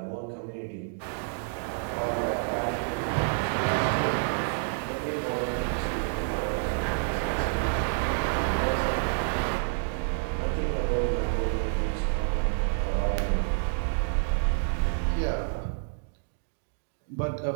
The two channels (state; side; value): silent; left; digital silence